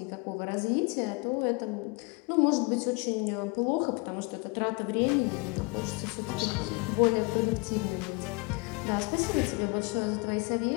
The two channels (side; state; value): right; quieter; 29.4 dB